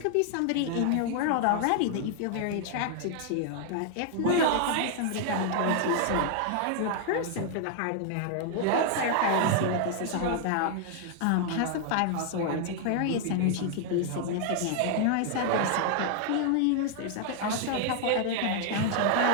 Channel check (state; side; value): different; both; correlation 0.00